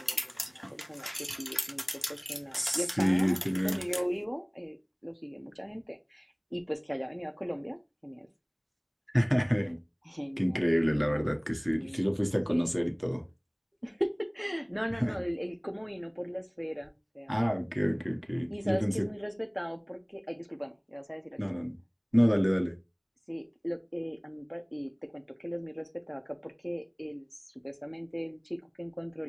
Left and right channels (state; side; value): identical; both; correlation 1.00